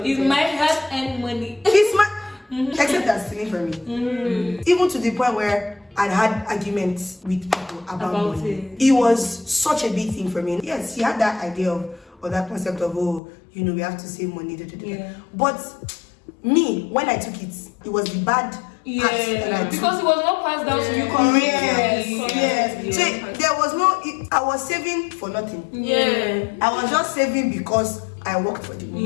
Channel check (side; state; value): right; drops out; at 13.2 s